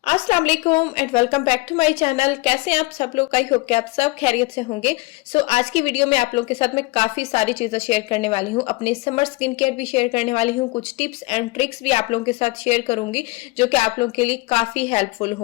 अस्सलाम वालेकुम and welcome back to my channel. कैसे हैं आप सब लोग? आई होप कि आप सब खैरियत से होंगे। आज की वीडियो में आप लोगों के साथ मैं काफी सारी चीजें शेयर करने वाली हूँ। अपने समर स्किन केयर भी शेयर करने वाली हूँ, कुछ टिप्स एंड ट्रिक्स भी आप लोगों के साथ शेयर करूंगी जो कि आप लोगों के लिए काफी हेल्पफुल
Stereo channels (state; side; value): quieter; right; 23.4 dB